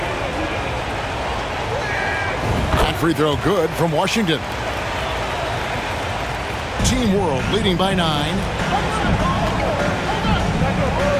Free throw good from Washington. Team World leading by 9.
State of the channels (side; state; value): both; identical; correlation 1.00